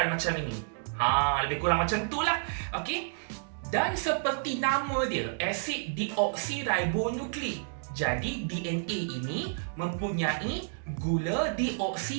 macam ini. Lebih kurang macam itulah. Okey. Dan seperti nama dia, asid deoksiribonukleik. Jadi DNA ini mempunyai gula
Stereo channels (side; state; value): left; silent; digital silence